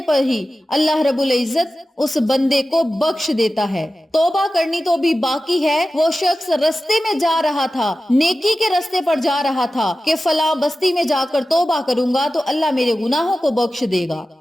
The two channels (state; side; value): normal; both; correlation 0.94